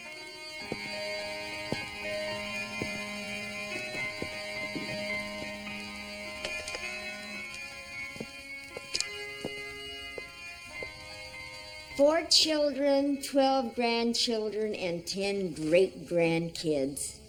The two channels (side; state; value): both; identical; correlation 1.00